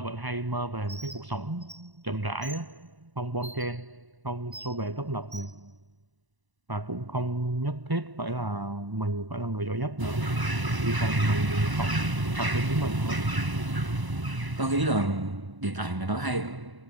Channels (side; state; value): left; late; 1.0 ms